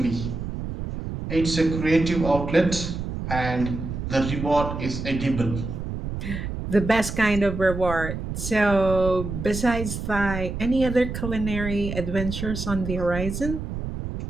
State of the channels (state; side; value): noise; right; rumble, 6 dB below the sound